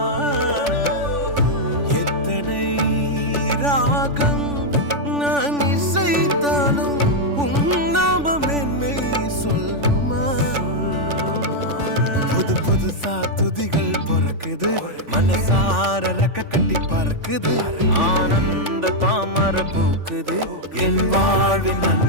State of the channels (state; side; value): late; left; 3.5 ms